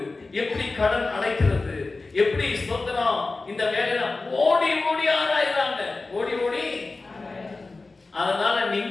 எப்படி கடன் அடைக்கிறது, எப்படி ஸ்தோத்திரம் இந்த வேலையில ஓடி ஓடி ஆராய்றாங்க. ஓடி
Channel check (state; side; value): quieter; right; 3.6 dB